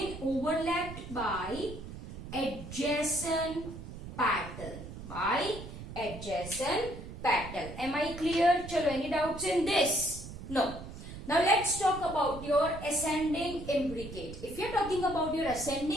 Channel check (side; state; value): right; noise; rumble, 11 dB below the sound